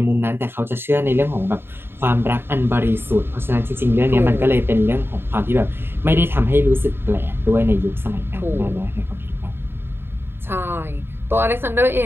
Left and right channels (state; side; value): late; left; 0.11 ms